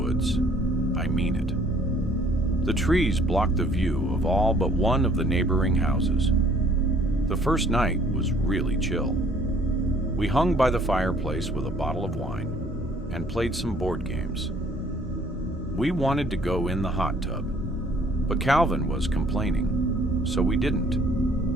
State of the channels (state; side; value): normal; both; correlation 0.59